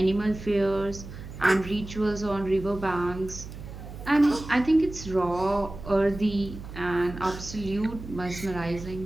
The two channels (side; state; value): right; noise; hum, 12 dB below the sound